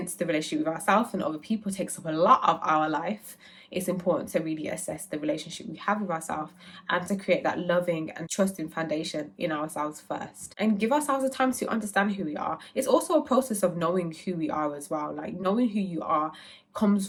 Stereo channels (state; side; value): identical; both; correlation 1.00